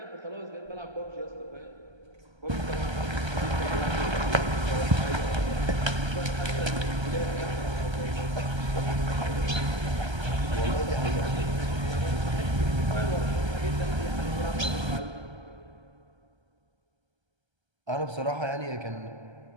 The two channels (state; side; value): late; left; 1.3 ms